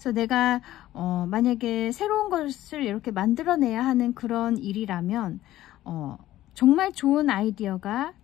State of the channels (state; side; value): quieter; right; 14.5 dB